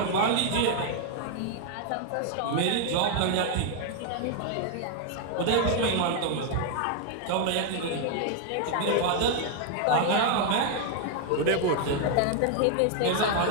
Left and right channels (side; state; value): both; different; correlation 0.00